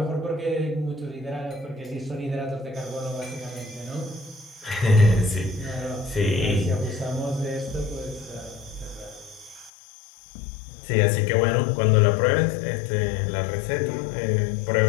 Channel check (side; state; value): right; drops out; at 9.7 s